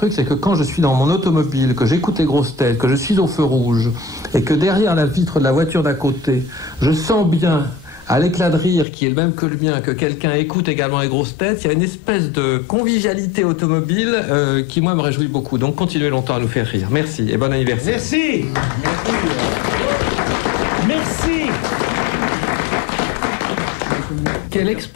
c'est que quand je suis dans mon automobile, que j'écoute les grosses têtes, que je suis au feu rouge et que derrière la vitre de la voiture d'à côté, je sens bien à l'éclat de rire qui est le même que le mien, que quelqu'un écoute également les grosses têtes, il y a une espèce de convivialité automobile qui, moi, me réjouit beaucoup. Donc, continuez longtemps à nous faire rire. Merci et bon anniversaire. Merci. Merci. Quelle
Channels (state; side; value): drops out; right; at 8.8 s